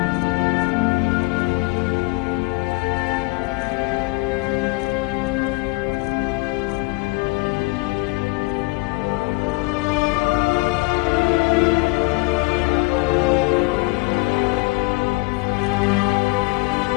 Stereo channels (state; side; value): quieter; right; 26.0 dB